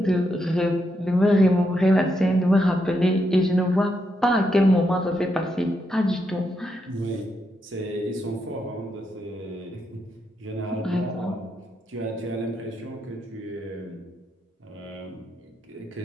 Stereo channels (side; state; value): both; normal; correlation 0.81